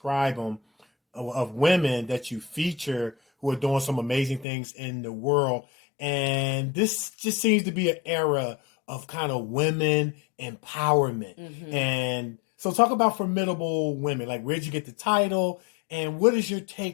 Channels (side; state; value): right; drops out; at 4.5 s